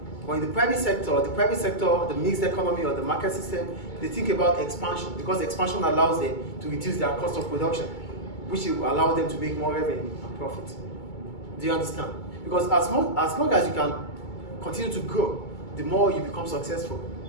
But in the private sector, the mixed economy or the market system, they think about expansion because expansion allows them to reduce their cost of production, which will allow them to make more revenue and profit. Do you understand? Because as long as you can continue to grow, the more you become successful.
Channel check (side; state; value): right; late; 2.3 ms